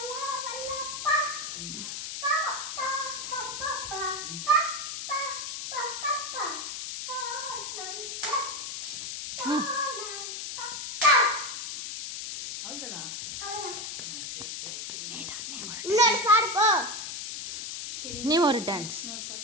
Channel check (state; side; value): noise; left; hiss, 6 dB below the sound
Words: நீ ஒரு டான்ஸ்